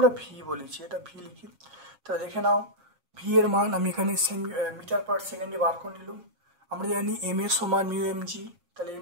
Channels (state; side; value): late; left; 7.3 ms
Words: ভি বলেছি, এটা ভি লিখি। তাহলে দেখে নাও ভি এর মান আমি এখানে মিটার পার সেকেন্ডে বার করে নিলাম। আমরা জানি এম এর সমান মিউ এম জি, তাহলে